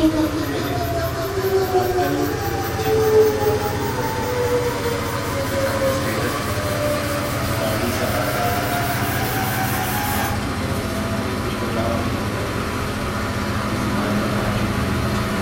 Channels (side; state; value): both; identical; correlation 1.00